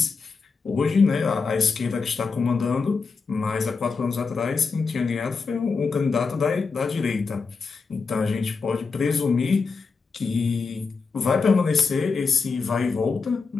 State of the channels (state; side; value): quieter; right; 4.7 dB